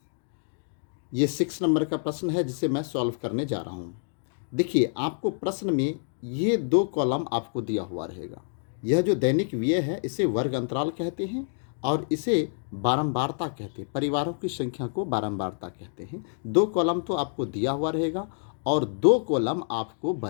ये 6 नंबर का प्रश्न है जिसे मैं सॉल्व करने जा रहा हूँ। देखिए आपको प्रश्न में ये 2 कॉलम आपको दिया हुआ रहेगा। यह जो दैनिक व्यय है इसे वर्ग अंतराल कहते हैं और इसे बारंबारता कहते हैं। परिवारों की संख्या को बारंबारता कहते हैं। 2 कॉलम तो आपको दिया हुआ रहेगा और 2 कॉलम आपको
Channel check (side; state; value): right; silent; digital silence